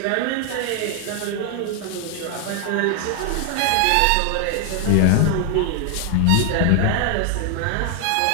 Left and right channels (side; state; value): both; different; correlation 0.00